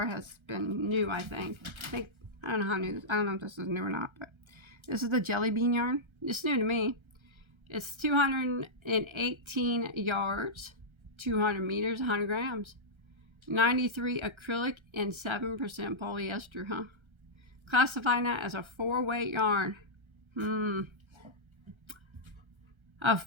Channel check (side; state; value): left; late; 1.3 ms